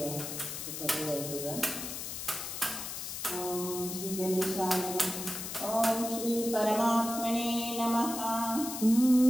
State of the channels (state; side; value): noise; left; hiss, 6 dB below the sound